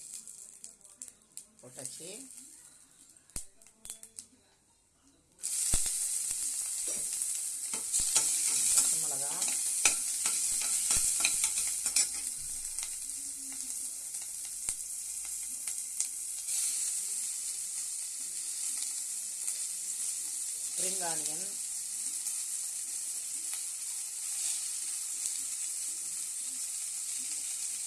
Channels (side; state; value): both; identical; correlation 1.00